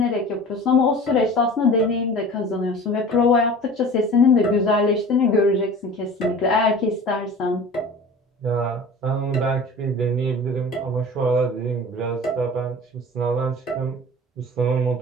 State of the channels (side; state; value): both; normal; correlation 0.40